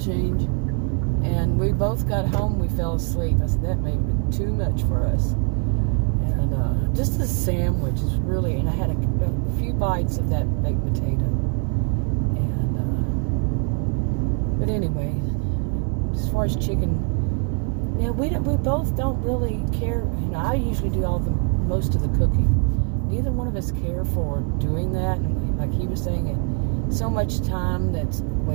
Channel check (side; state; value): left; quieter; 37.7 dB